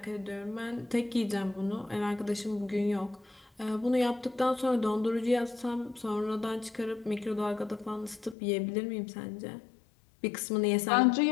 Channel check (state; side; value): drops out; right; at 8.3 s